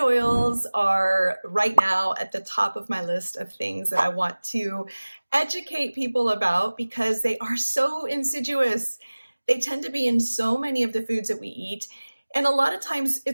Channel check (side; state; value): both; inverted; correlation -1.00